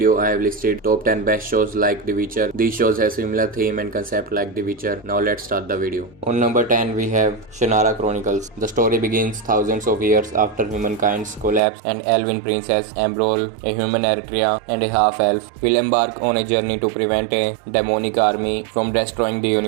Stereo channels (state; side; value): drops out; left; at 11.6 s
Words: I have listed top 10 best shows like The Witcher. These shows have similar theme and concept like The Witcher. Now let's start the video. On number 10, we have Shannara Chronicles. The story begins thousands of years after humankind's collapse and elven princess Ambrol, a human Eritrea and a half-elf, will embark on a journey to prevent a demonic army from destroying the